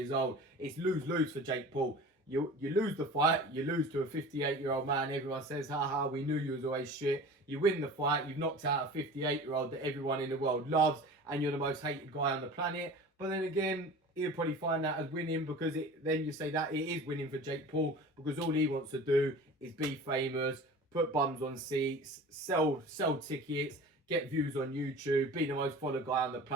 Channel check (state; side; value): normal; both; correlation 0.39